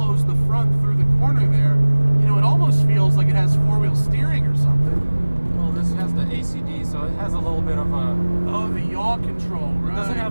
the front through the corner there, you know, it almost feels like it has four-wheel steering or something. Well, this has the ACD, so it has a little bit of a... Oh, the yaw control, right? It doesn't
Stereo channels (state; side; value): inverted; both; correlation -1.00